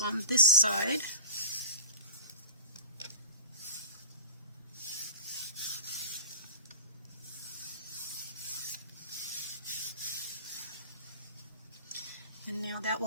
this side. And now that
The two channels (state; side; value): inverted; both; correlation -0.38